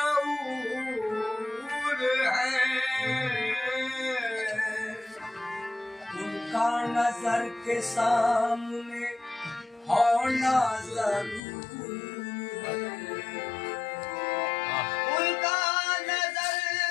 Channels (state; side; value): drops out; right; at 11.4 s